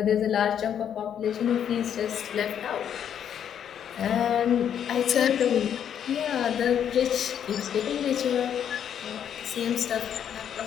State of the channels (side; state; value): right; quieter; 9.0 dB